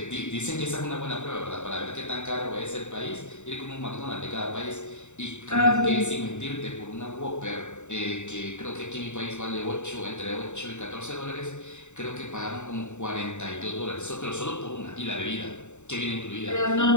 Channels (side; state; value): right; late; 0.84 ms